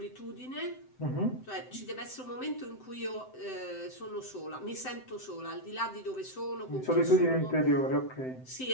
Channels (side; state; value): right; late; 7.8 ms